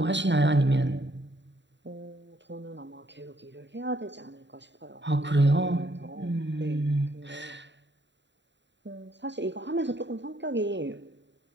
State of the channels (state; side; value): late; left; 0.52 ms